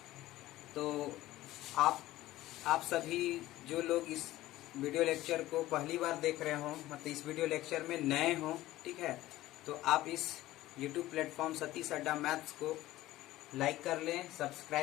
तो आप सभी जो लोग इस वीडियो लेक्चर को पहली बार देख रहे हो, मतलब इस वीडियो लेक्चर में नए हो, ठीक है, तो आप इस YouTube प्लेटफॉर्म सतीश अड्डा मैथ्स को लाइक कर लें,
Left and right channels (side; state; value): right; quieter; 16.1 dB